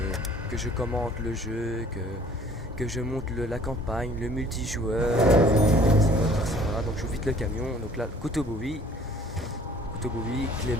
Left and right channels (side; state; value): both; normal; correlation 0.53